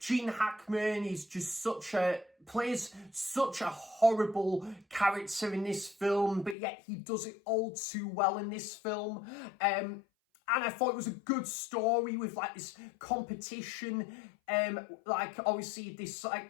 Hackman is just plays such a horrible character in this film, but yet he does it all too well in this film. And I thought it was a good story with like this competition, like obviously this like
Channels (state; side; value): drops out; right; at 6.6 s